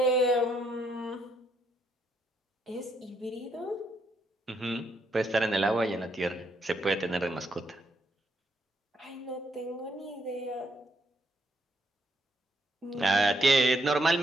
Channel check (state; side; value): normal; both; correlation 0.75